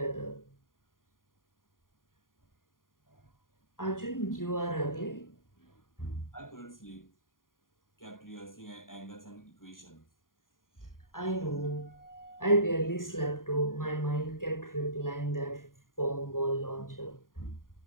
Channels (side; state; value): right; late; 0.90 ms